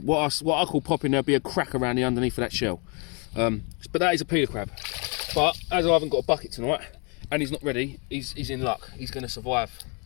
What I call popping, there'll be a crack around the underneath of that shell. But that is a peeler crab. But as I haven't got a bucket tonight and he's not ready, he's in luck. He's going to survive.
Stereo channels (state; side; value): quieter; right; 34.1 dB